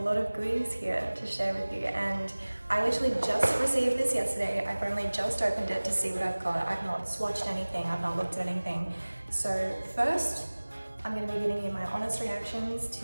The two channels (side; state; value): both; inverted; correlation -1.00